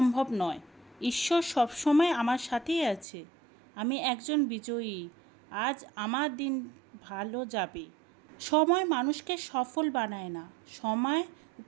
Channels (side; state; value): left; drops out; at 3.1 s